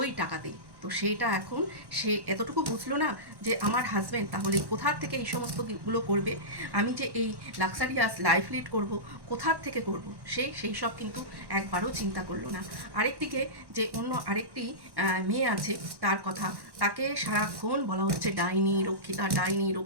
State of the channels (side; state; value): left; late; 1.1 ms